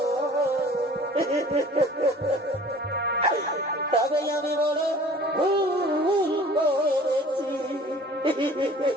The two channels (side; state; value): both; normal; correlation 0.47